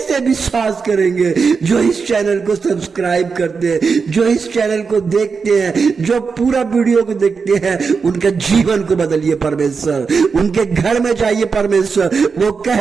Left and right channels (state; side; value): quieter; left; 5.2 dB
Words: विश्वास करेंगे? जो इस चैनल को सब्सक्राइब करते हैं, जो इस चैनल को देखते हैं, जो पूरा वीडियो को देखते हैं, उनका जीवन को बदलिए परमेश्वर, उनके घर में जाइए परमेश्वर, वो